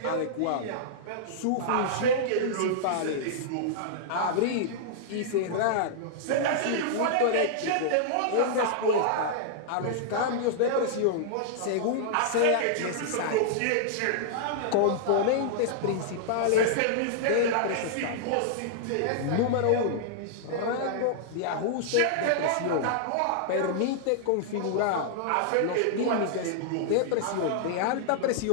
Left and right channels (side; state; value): both; different; correlation -0.01